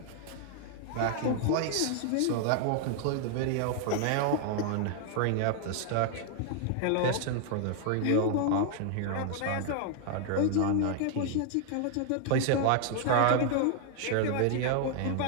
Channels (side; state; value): both; different; correlation 0.00